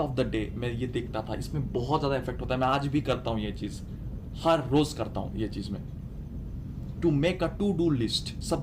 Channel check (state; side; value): identical; both; correlation 1.00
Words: the day मैं ये देखता था, इसमें बहुत ज्यादा इफेक्ट होता है। मैं आज भी करता हूं ये चीज, हर रोज करता हूं ये चीज में। To make a to do list,